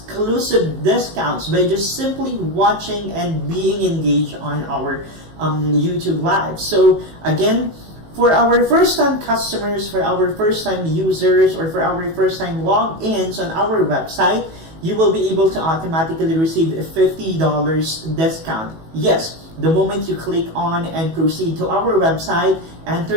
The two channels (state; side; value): late; left; 18 ms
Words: discounts by just simply watching and being engaged on our YouTube Live. So again, for our first-time customers, for our first-time users, or for our first-time logins on our website, you will be able to automatically receive a $50 discount. Yes, the moment you click on and proceed to our website, enter